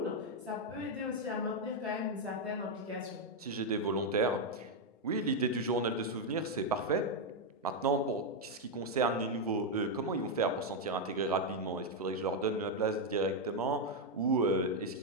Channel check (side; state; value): both; normal; correlation 0.02